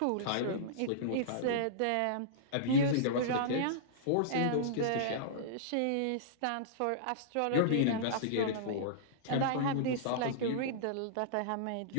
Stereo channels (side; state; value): both; different; correlation -0.03